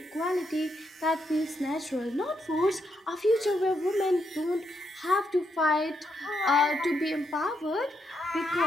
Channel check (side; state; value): both; normal; correlation 0.79